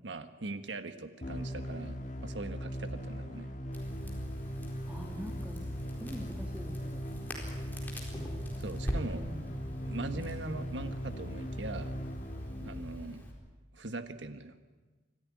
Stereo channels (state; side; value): normal; both; correlation 0.75